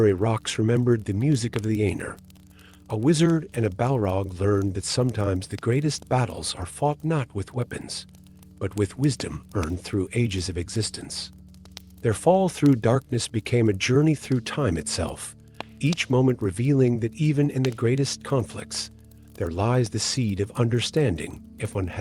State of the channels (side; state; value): both; identical; correlation 1.00